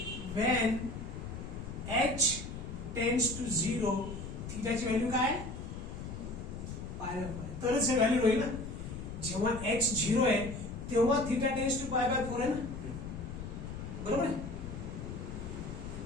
when h tends to 0 थीटाची value काय पाय बाय 4 तरच हे व्हॅल्यू होईल ना. जेव्हा h 0 आहे तेव्हा theta tends to pi by 4 आहे ना. बरोबर आहे.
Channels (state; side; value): noise; left; rumble, 8 dB below the sound